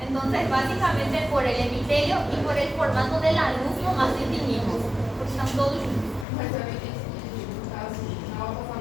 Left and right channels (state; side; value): drops out; right; at 6.2 s